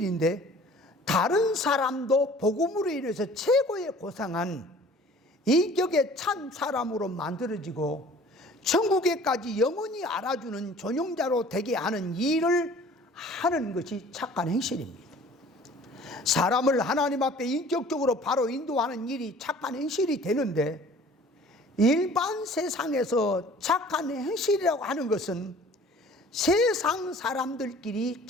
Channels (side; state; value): both; normal; correlation 0.49